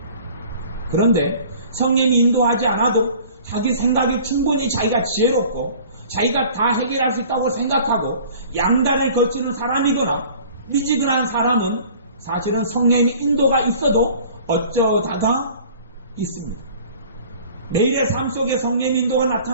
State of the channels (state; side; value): inverted; both; correlation -0.48